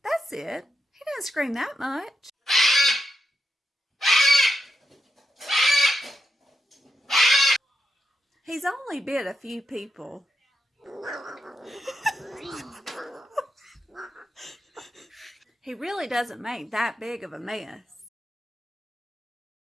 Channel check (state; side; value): normal; both; correlation 0.85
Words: That's it. He doesn't scream that much. He's only bit a few people. He really doesn't make that big of a mess.